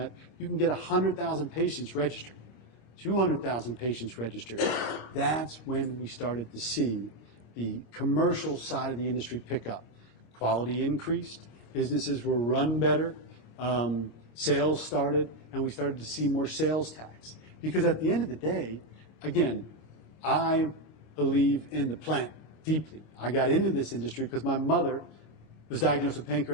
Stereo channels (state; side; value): late; right; 26 ms